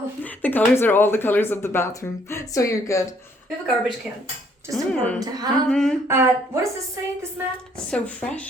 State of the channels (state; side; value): normal; both; correlation 0.65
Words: The colors are all the colors of the bathroom. So you're good. We have a garbage can. Just important to have. What does this say, this mat? So